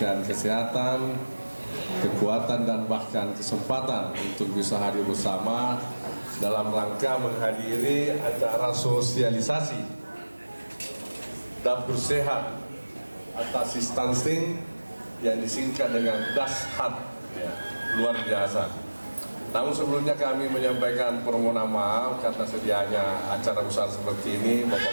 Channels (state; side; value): inverted; both; correlation -1.00